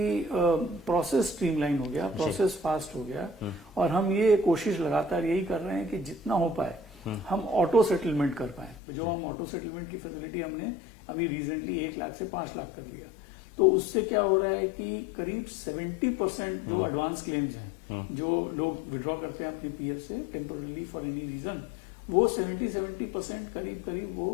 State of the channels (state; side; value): drops out; right; at 8.8 s